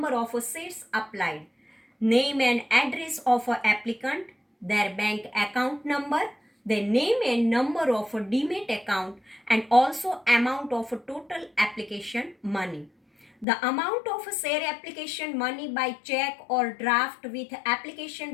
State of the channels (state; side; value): drops out; right; at 13.5 s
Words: of shares applied, name and address of an applicant, their bank account number, the name and number of a demat account, and also amount of a total application money. The amount of a share application money by check or draft with